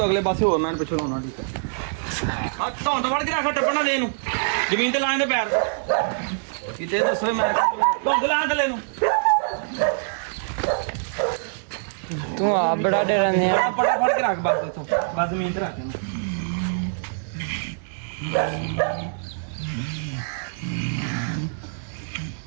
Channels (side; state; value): left; silent; digital silence